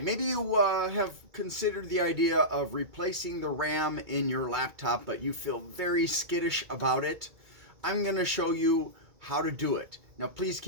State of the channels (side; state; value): left; late; 2.3 ms